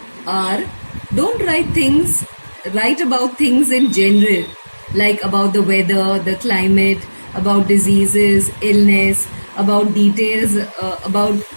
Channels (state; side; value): inverted; both; correlation -1.00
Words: are: don't write about things in general, like about the weather, the climate, about diseases, illness, about details, about